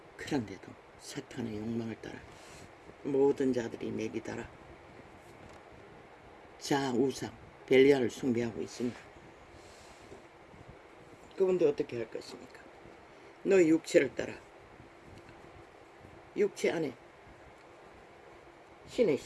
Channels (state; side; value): identical; both; correlation 1.00